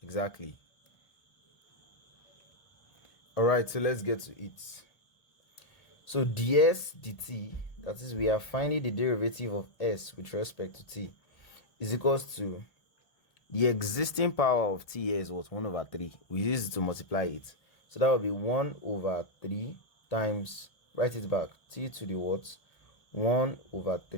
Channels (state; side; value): late; right; 1.8 ms